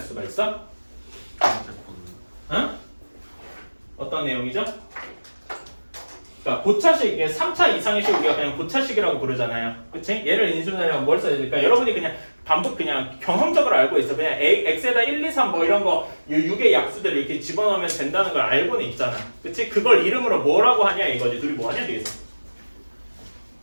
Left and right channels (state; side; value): inverted; both; correlation -1.00